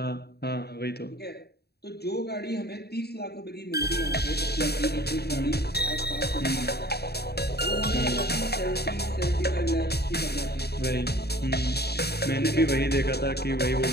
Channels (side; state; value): right; late; 0.47 ms